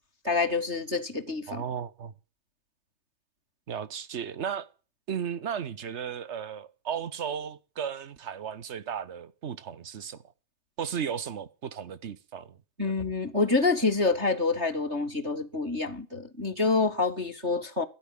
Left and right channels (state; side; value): late; left; 3.3 ms